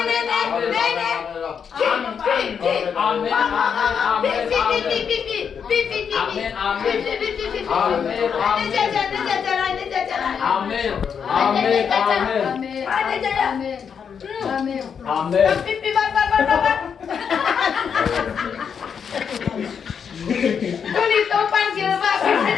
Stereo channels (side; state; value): right; quieter; 7.0 dB